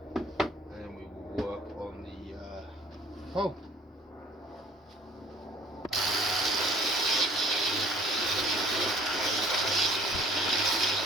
and then we will work on the pole.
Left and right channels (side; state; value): both; normal; correlation 0.54